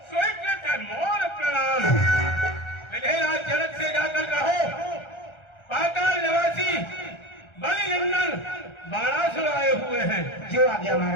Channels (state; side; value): late; right; 1.3 ms